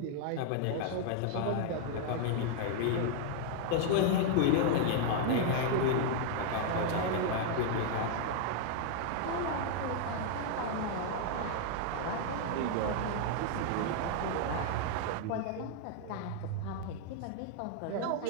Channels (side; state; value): both; different; correlation 0.00